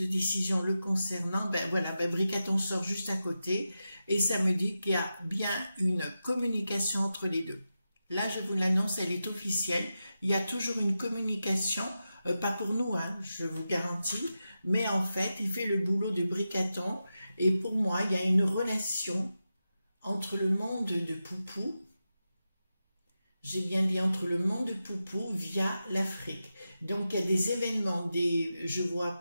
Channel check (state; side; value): inverted; both; correlation -0.91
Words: décision le concernant. Ben voilà, ben Bricaton sort juste à côté et ça me dit qu'il y a bien une communication entre les deux. Là, je vous l'annonce, elle est officielle. Il y a toujours une communication, pas pour nous, hein, je vous garantis, mais en fait, il fait le boulot de Bricaton. Et pour moi, il y a une relation entre le monde de Poupou, j'ai bien dit entre le monde de Poupou via l'Afrique. Donc, il y a des événements, je vois